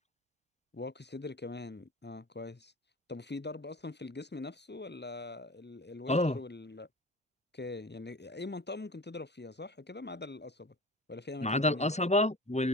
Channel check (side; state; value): both; normal; correlation 0.37